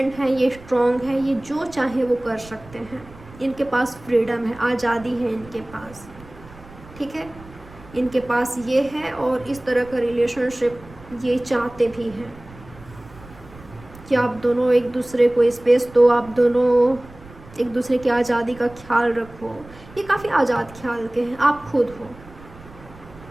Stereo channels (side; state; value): right; noise; rumble, 20 dB below the sound